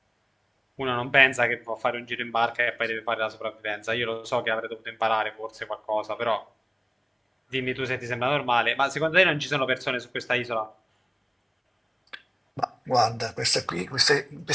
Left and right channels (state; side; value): identical; both; correlation 1.00